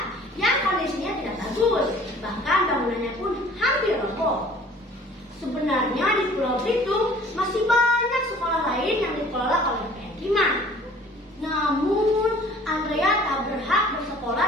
yang kondisinya tidak bagus, bahkan bangunannya pun hampir roboh. Sebenarnya di Pulau Belitung masih banyak sekolah lain yang dikelola oleh PM Timah. Namun, Andrea tak berhak bersekolah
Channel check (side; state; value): both; normal; correlation 0.51